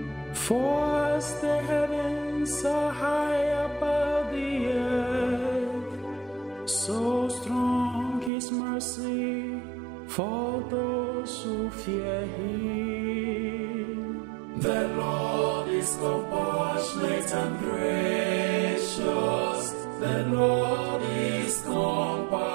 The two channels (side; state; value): left; drops out; at 8.3 s